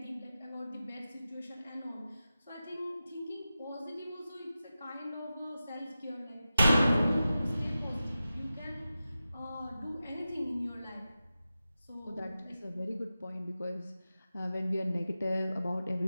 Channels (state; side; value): inverted; both; correlation -0.93